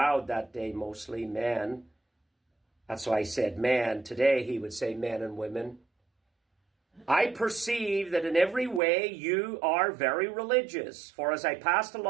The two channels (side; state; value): left; drops out; at 8.8 s